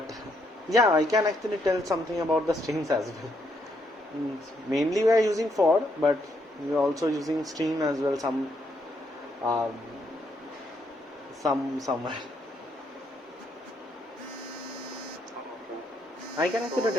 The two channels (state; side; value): normal; both; correlation 0.75